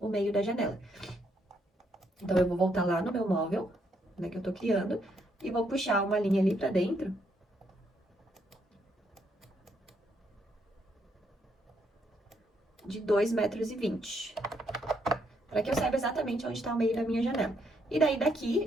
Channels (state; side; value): normal; both; correlation 0.74